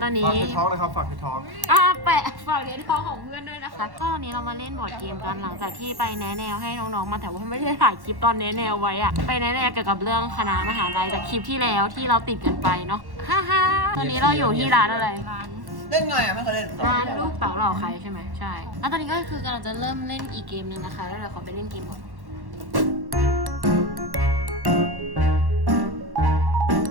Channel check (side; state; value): left; late; 1.1 ms